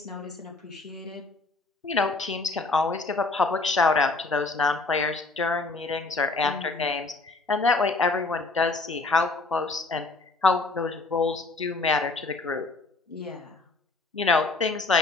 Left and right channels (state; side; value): quieter; right; 3.6 dB